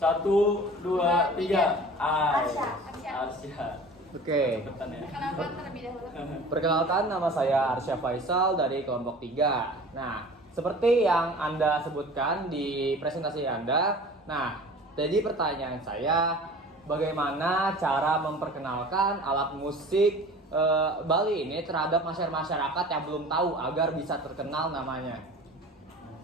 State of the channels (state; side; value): normal; both; correlation 0.42